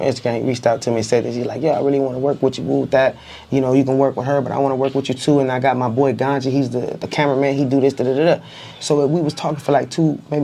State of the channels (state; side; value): identical; both; correlation 1.00